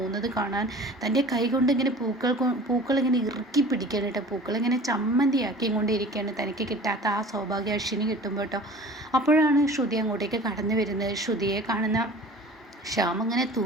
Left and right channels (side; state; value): both; normal; correlation 0.43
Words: കാണാൻ തൻ്റെ കൈ കൊണ്ട് ഇങ്ങനെ പൂക്കൾ ഇങ്ങനെ ഇറുക്കി പിടിക്കണം കേട്ടോ. പൂക്കൾ ഇങ്ങനെ ചമ്മന്തിയാക്കി കൊണ്ടിരിക്കുകയാണ്. തനിക്ക് കിട്ടാത്ത ആ സൗഭാഗ്യ അശ്വിന് കിട്ടുമ്പോൾ കേട്ടോ. അപ്പോഴാണ് ശ്രുതി അങ്ങോട്ടേക്ക് കടന്നു വരുന്നത്. ശ്രുതിയെ കാണുന്ന ശ്യാം അങ്ങനെ